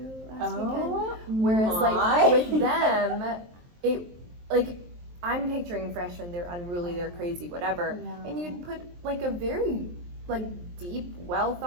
last weekend. Whereas like with them, it, like, I'm picturing freshmen, they're unruly, they're crazy, whatever. And you'd put like a very like deep, well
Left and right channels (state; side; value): late; left; 23 ms